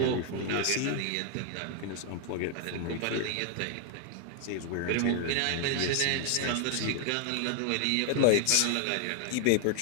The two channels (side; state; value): both; different; correlation 0.00